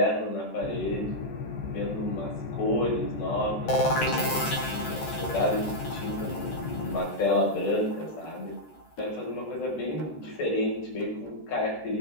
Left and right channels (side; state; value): right; late; 13 ms